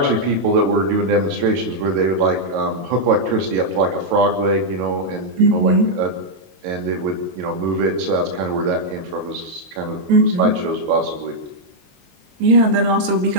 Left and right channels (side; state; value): left; late; 22 ms